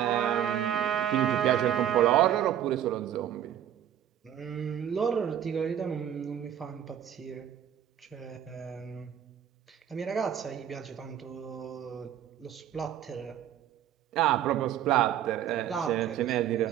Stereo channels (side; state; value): left; quieter; 10.4 dB